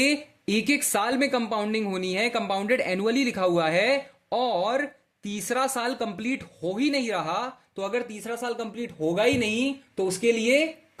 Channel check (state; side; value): identical; both; correlation 1.00